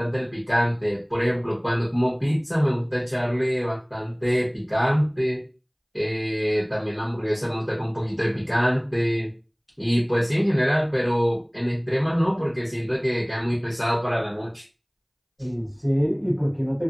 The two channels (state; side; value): identical; both; correlation 1.00